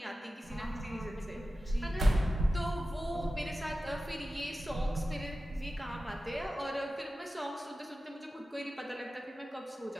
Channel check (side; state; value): both; normal; correlation 0.94